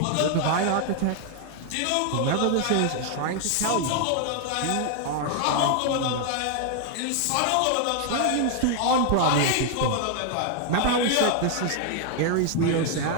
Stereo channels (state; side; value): different; both; correlation 0.00